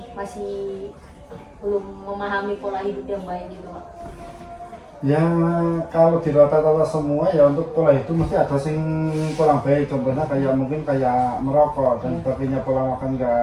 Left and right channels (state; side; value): identical; both; correlation 1.00